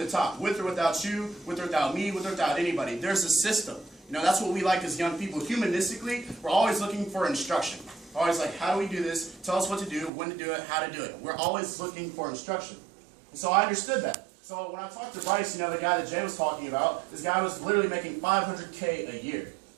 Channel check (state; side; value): drops out; left; at 10.1 s